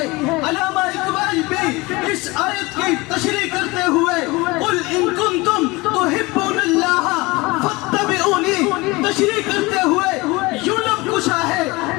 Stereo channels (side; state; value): right; quieter; 23.2 dB